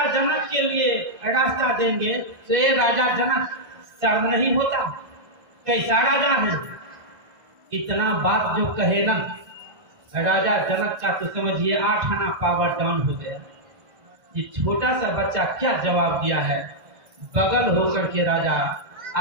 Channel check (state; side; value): late; left; 1.5 ms